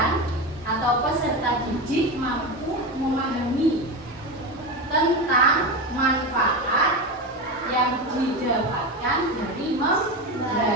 atau peserta didik mampu memahami tentang manfaat yang didapatkan dari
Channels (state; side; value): normal; both; correlation 0.19